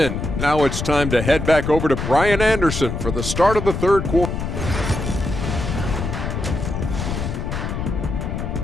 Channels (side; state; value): left; noise; rumble, 4 dB below the sound